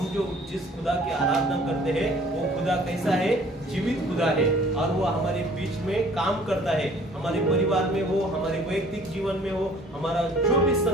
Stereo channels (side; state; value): both; normal; correlation 0.54